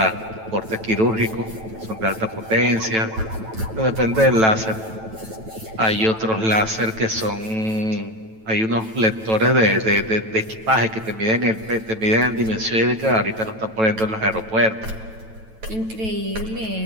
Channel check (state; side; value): late; left; 9.1 ms